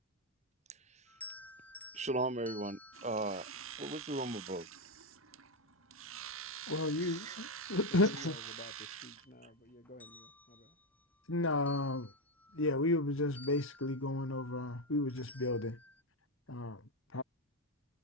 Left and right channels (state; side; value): normal; both; correlation 0.08